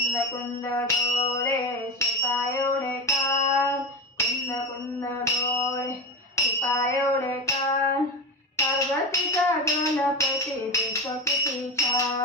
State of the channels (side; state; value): both; normal; correlation 0.20